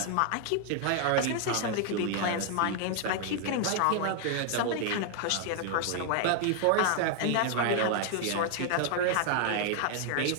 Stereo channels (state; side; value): different; both; correlation 0.00